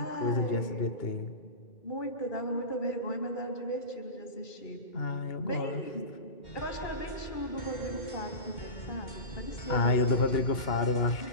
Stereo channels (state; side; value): late; right; 2.8 ms